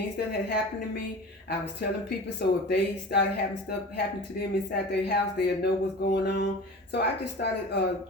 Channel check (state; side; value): normal; both; correlation 0.36